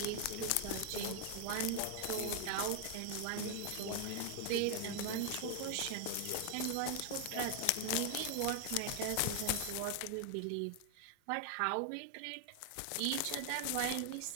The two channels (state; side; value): different; both; correlation 0.00